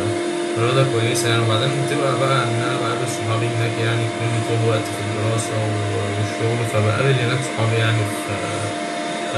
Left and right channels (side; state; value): both; identical; correlation 1.00